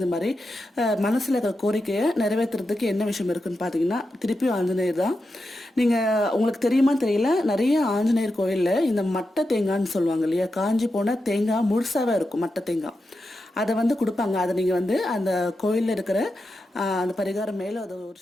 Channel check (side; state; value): both; normal; correlation 0.89